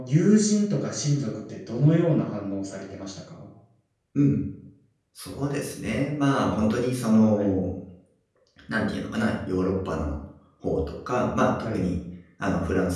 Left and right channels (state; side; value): identical; both; correlation 1.00